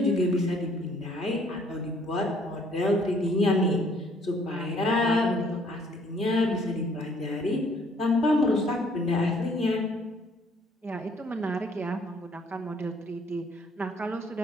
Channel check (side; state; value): both; normal; correlation 0.62